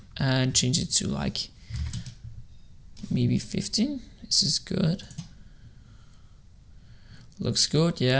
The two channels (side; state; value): both; identical; correlation 1.00